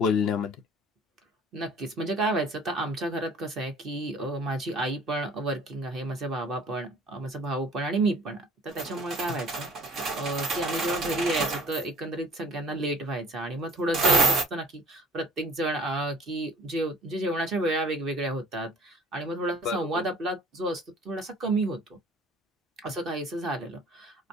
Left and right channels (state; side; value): normal; both; correlation 0.50